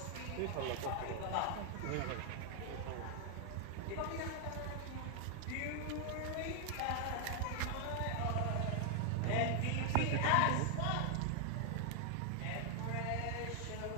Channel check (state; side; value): different; both; correlation 0.00